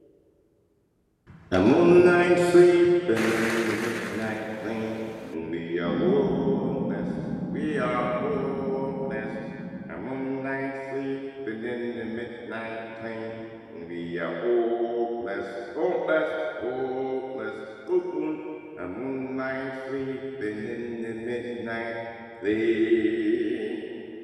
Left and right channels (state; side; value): identical; both; correlation 1.00